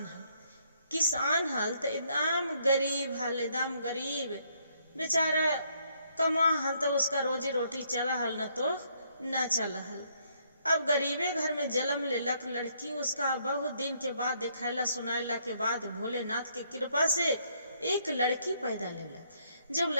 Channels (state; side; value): inverted; both; correlation -0.70